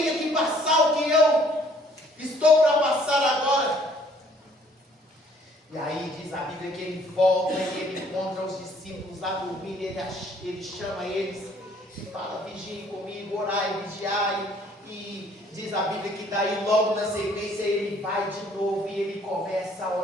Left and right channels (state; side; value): normal; both; correlation 0.60